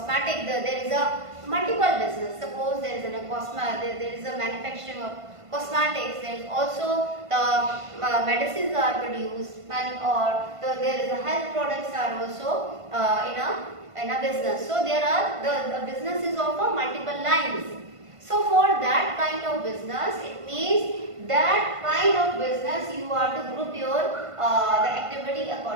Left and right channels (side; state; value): left; late; 1.5 ms